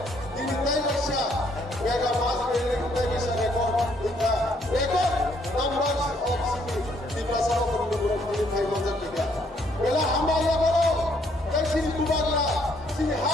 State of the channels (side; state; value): both; normal; correlation 0.68